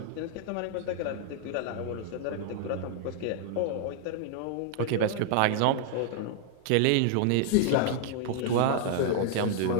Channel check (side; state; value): both; different; correlation 0.00